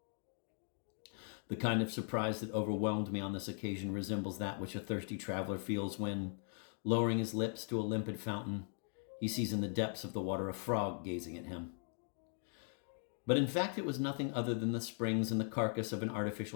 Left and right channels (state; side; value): silent; right; 51 dB below the other